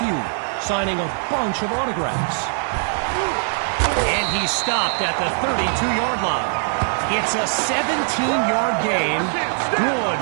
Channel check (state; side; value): silent; left; digital silence